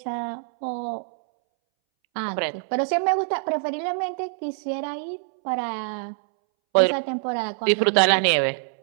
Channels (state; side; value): silent; left; 62 dB below the other